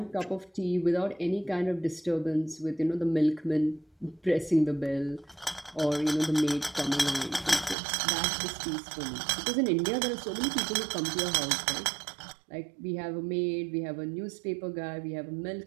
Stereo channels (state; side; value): drops out; left; at 7.8 s